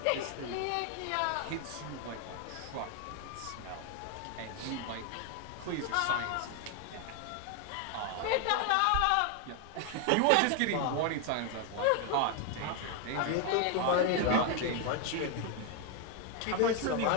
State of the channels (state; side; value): different; both; correlation 0.01